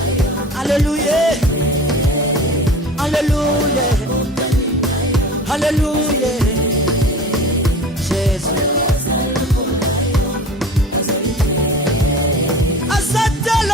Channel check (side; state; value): both; normal; correlation 0.38